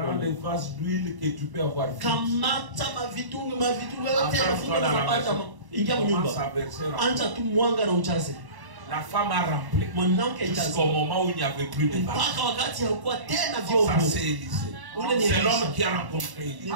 les vases d'huile que tu peux avoir vite. Commence à verser. La femme a rempli jusqu'au moment où il n'y avait plus de vase. Ça c'est Élisée. C'est l'homme qui a rencontré Élie. Il a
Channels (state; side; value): late; left; 1.1 ms